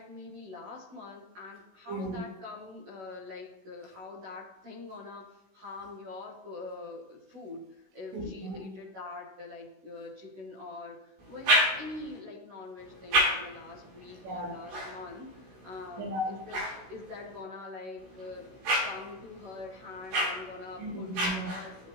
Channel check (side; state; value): left; late; 16 ms